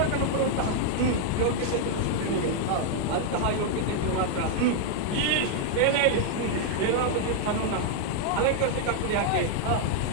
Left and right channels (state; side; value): different; both; correlation 0.00